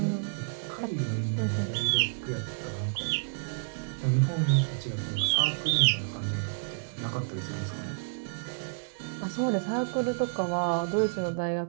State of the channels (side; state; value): left; silent; digital silence